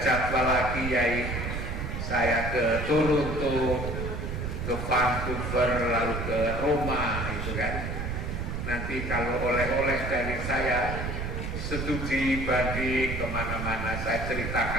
jadwal lagi, yaitu saya ke Toronto, ke Vancouver, lalu ke Roma, itu kan. Nanti kalau oleh-oleh dari saya, studi banding kemana-mana, saya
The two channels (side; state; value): right; noise; rumble, 4 dB below the sound